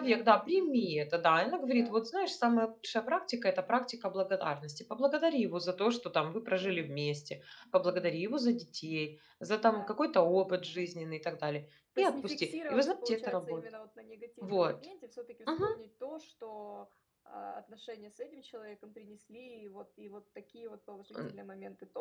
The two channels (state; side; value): identical; both; correlation 1.00